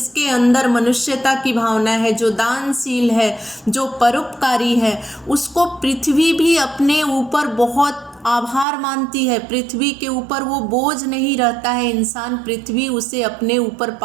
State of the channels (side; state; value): left; drops out; at 8.7 s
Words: अंदर मनुष्यता की भावना है, जो दानशील है, जो परोपकारी है, उसको पृथ्वी भी अपने ऊपर बहुत आभार मानती है। पृथ्वी के ऊपर वो बोझ नहीं रहता है इंसान, पृथ्वी उसे अपने ऊपर